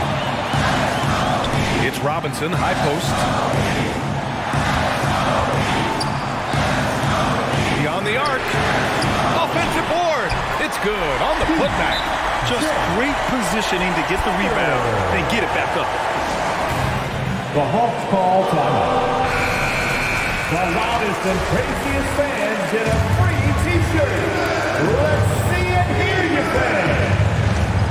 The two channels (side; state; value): both; identical; correlation 1.00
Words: It's Robinson, high post. Beyond the arc. Offensive board. It's good on the putback. Just great positioning to get the rebound and get it back up. The Hawks call timeout. The loudest and craziest fans get a free T-shirt. Let's see it, hear you, fans.